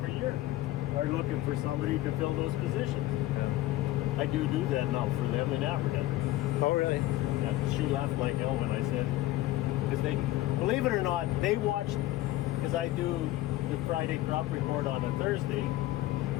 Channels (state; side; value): quieter; right; 16.1 dB